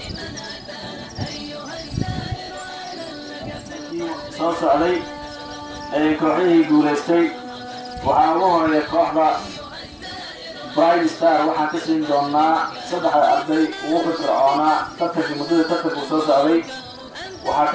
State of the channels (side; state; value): both; identical; correlation 1.00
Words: أتانا أيها السائر أهلا لك في soo socday ee kooxihii guulaystay waxaa ugu horeeya kooxda Bright Star waxaan ka siin doonaa 3 arday ugu firfircoonaa tartanka muddada tartanku soo socday waxaa